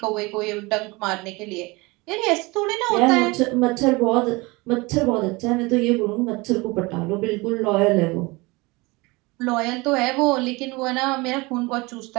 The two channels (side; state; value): left; quieter; 24.5 dB